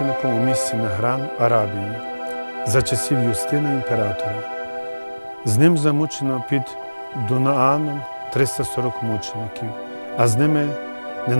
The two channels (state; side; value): inverted; both; correlation -1.00